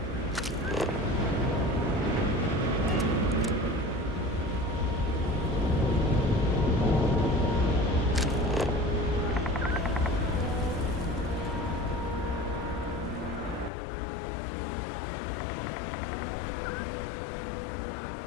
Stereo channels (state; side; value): drops out; right; at 13.7 s